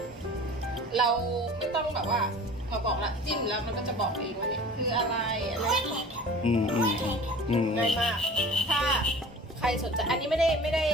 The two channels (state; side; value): normal; both; correlation 0.42